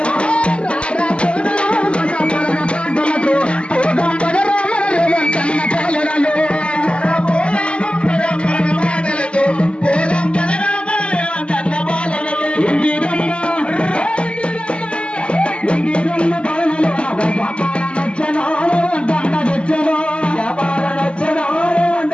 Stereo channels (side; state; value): right; late; 0.055 ms